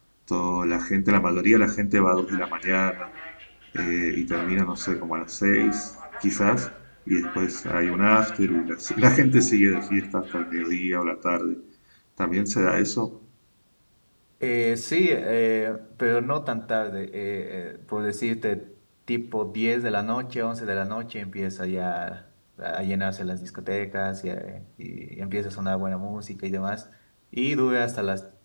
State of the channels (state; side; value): inverted; both; correlation -1.00